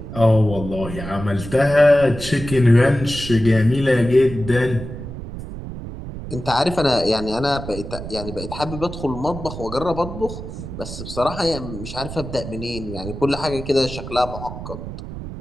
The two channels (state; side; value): noise; right; rumble, 9 dB below the sound